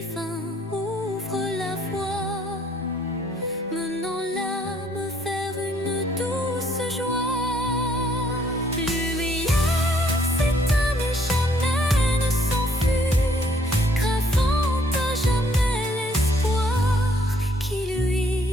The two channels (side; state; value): both; normal; correlation 0.65